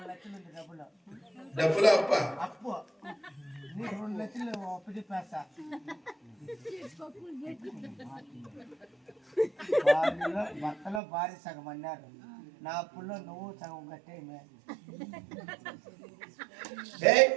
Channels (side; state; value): left; drops out; at 11.0 s